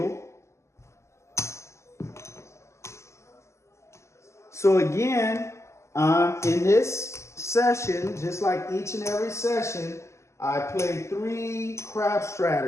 So again, in this session, just like each and every session, I play 3 crab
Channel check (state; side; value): late; right; 0.13 ms